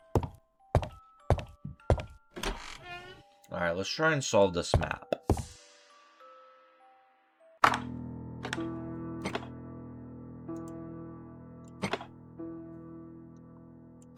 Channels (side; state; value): both; identical; correlation 1.00